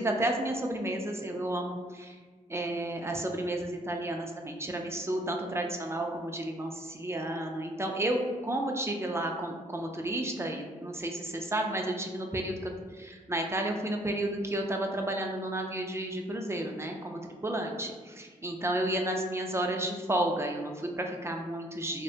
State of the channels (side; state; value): both; normal; correlation 0.61